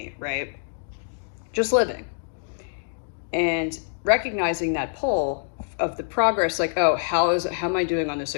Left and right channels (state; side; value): silent; right; digital silence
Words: right? Just living. And recognizing that pull of the progress, like, oh, how am I doing on this